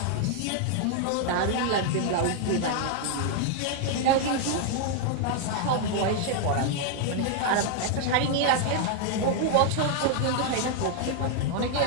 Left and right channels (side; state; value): both; different; correlation 0.00